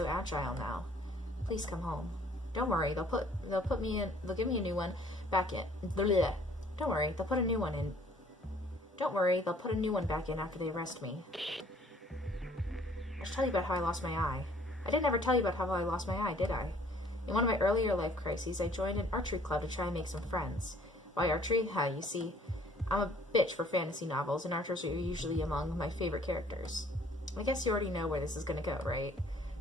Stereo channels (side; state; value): both; normal; correlation 0.58